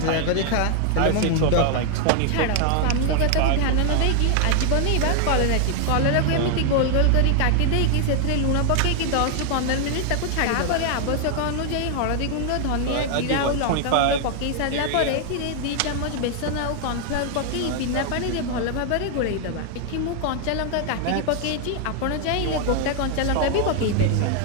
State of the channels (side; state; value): both; different; correlation 0.00